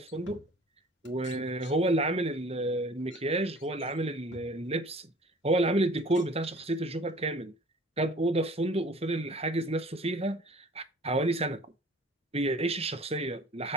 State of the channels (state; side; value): normal; both; correlation 0.48